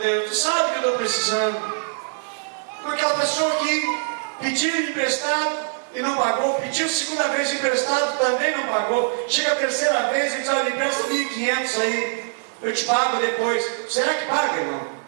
tu sabe que eu estou precisando. Com aquela pessoa que pediu emprestado e não pagou, pediu segunda vez emprestado, também não pagou. Chega a terceira vez e diz: olha, empresta 1.500 aí, eu te pago depois. Será que paga, irmão?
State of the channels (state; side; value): silent; left; digital silence